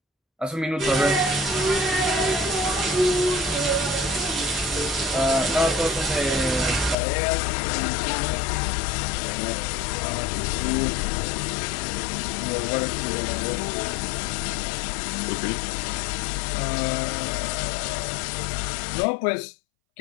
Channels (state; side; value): drops out; right; at 7.0 s